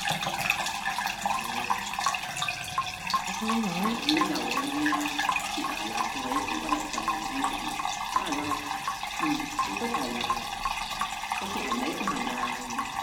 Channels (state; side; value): identical; both; correlation 1.00